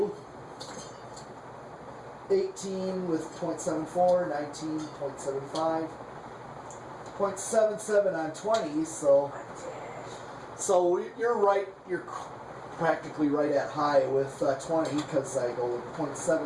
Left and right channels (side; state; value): both; identical; correlation 1.00